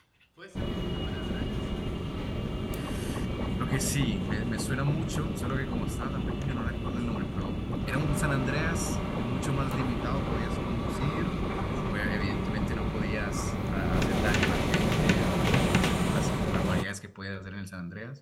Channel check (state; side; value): identical; both; correlation 1.00